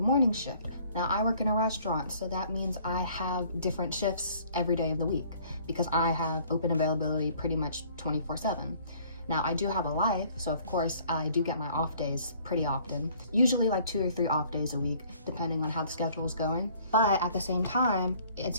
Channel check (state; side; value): inverted; both; correlation -0.57